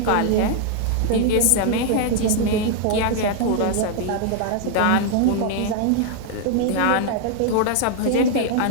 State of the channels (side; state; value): both; different; correlation 0.00